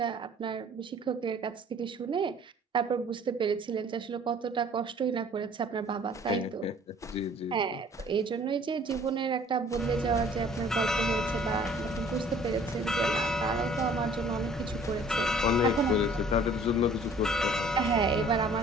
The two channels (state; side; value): normal; both; correlation 0.53